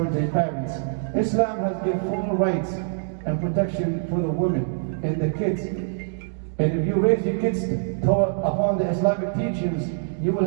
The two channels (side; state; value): left; silent; digital silence